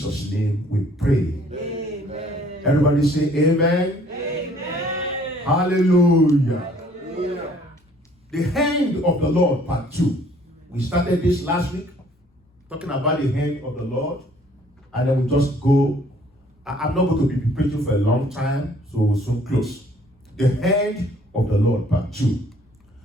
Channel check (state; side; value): normal; both; correlation 0.59